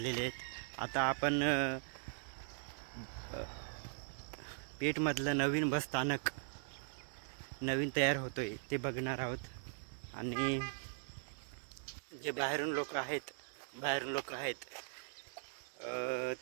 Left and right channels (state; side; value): silent; left; digital silence